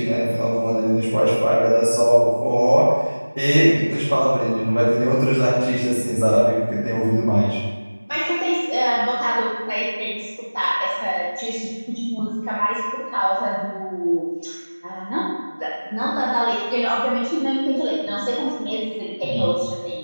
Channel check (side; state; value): both; inverted; correlation -1.00